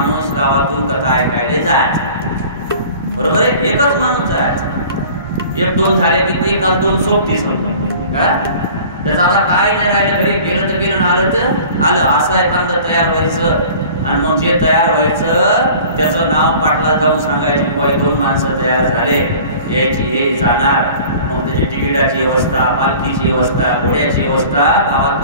गावातून कथा ऐकायला जायचा. बरोबर आहे, एकच माणूस जायचा. 1-2 झाले की काल 2 सोबती का त्याचं आता काय नाही राहिलं, घरी गेलं तर गेलं, आलं तर आलं, असं एखादं तयार व्हायचं. आणि मग जे तयार व्हायचं त्याचं नाव पाटला जाऊन सांगायचे, 2 माणसं तयार झाले, यायची हे जाणार. मग त्याची तिकिटाची व्यवस्था, पालखीची व्यवस्था, घोड्याची व्यवस्था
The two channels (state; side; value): inverted; both; correlation -0.45